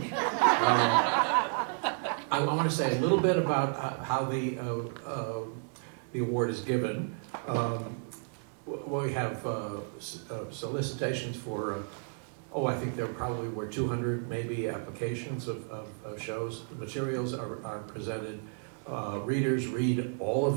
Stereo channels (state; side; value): silent; left; 56 dB below the other